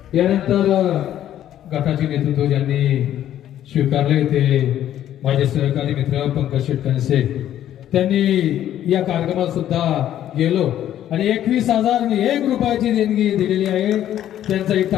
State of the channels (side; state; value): right; quieter; 11.6 dB